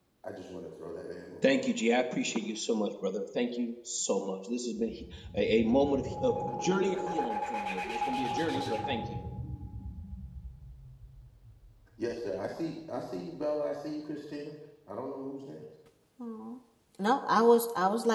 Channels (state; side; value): identical; both; correlation 1.00